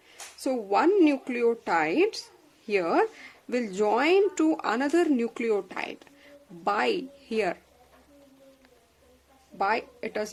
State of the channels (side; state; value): both; identical; correlation 1.00